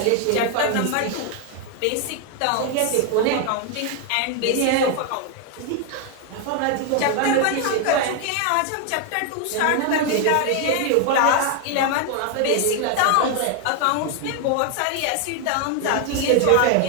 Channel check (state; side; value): different; both; correlation 0.01